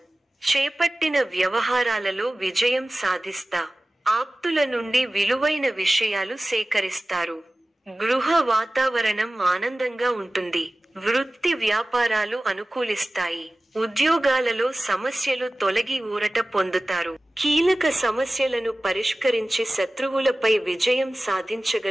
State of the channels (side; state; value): both; normal; correlation 0.97